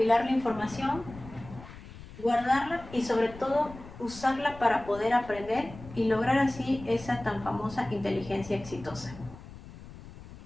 la información, guardarla y sobre todo usarla para poder aprender y lograr así esa tan famosa inteligencia exitosa.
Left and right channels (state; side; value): noise; left; rumble, 16 dB below the sound